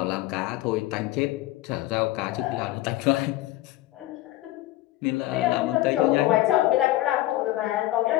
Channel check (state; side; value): quieter; right; 16.1 dB